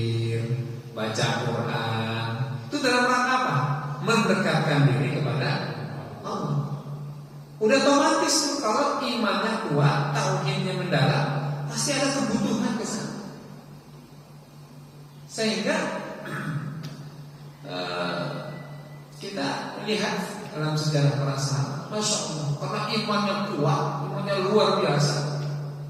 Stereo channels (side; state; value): both; identical; correlation 1.00